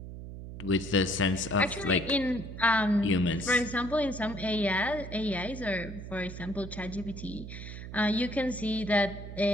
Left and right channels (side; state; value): right; noise; hum, 10 dB below the sound